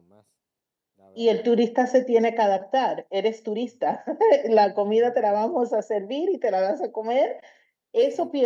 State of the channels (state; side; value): identical; both; correlation 1.00